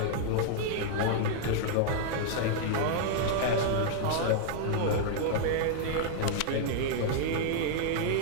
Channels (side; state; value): both; different; correlation -0.01